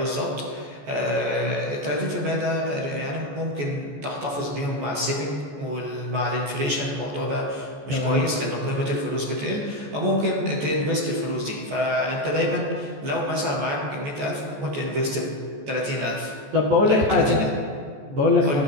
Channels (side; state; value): left; late; 14 ms